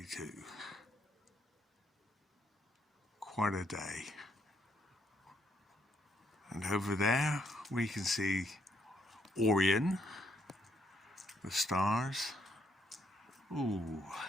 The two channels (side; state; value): both; normal; correlation 0.73